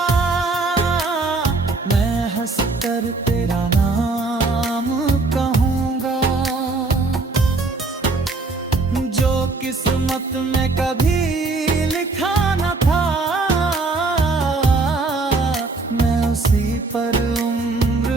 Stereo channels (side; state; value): left; quieter; 3.6 dB